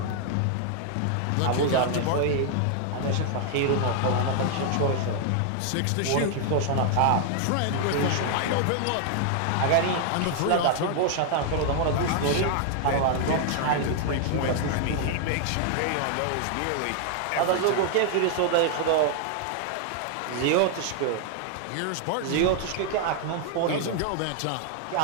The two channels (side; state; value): both; different; correlation 0.00